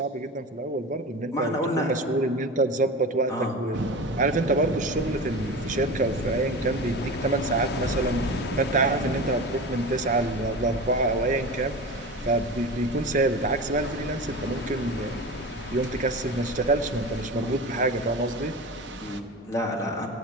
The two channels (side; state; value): both; normal; correlation 0.29